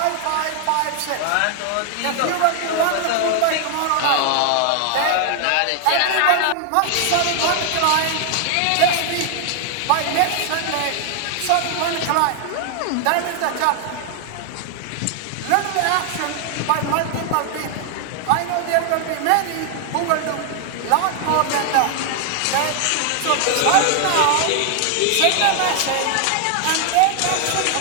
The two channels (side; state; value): both; different; correlation 0.00